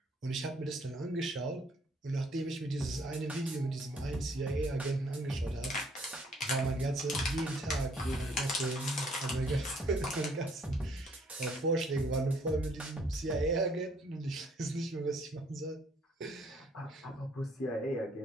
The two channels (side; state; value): both; normal; correlation 0.64